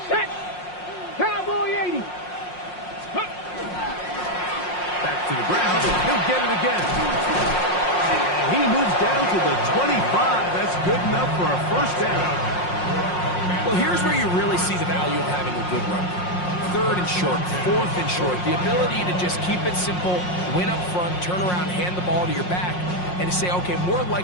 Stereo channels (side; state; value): right; late; 5.6 ms